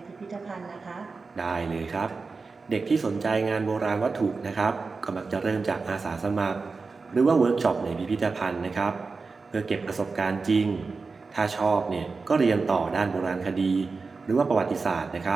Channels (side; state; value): left; quieter; 4.3 dB